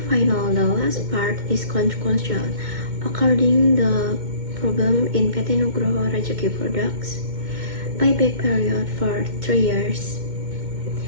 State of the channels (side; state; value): left; late; 2.1 ms